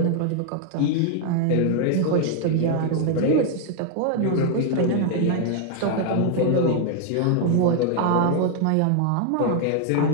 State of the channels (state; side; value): different; both; correlation 0.00